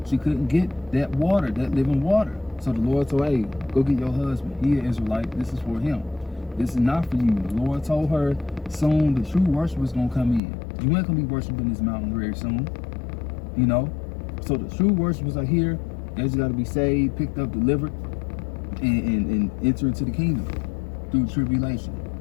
She couldn't get that water, that living water. So the Lord told her, hey, go get your husband. He an Israelite. This is for him. This is not for you. The Lord told her, soon the true worshipers gonna come in. You ain't gonna be worshiping this mountain very soon. You know? So the true worshipers are here. They just gotta be saved, picked up, delivered, and enter into the kingdom through tribulation.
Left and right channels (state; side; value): drops out; right; at 10.4 s